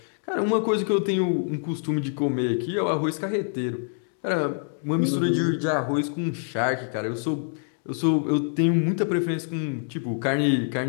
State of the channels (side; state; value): right; silent; digital silence